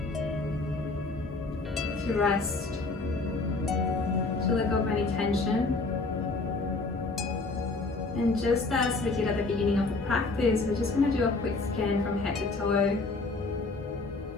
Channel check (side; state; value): right; quieter; 3.5 dB